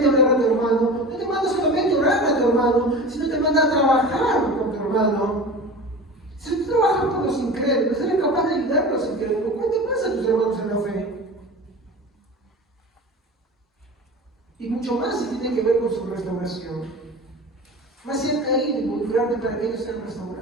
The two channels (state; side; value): normal; both; correlation 0.34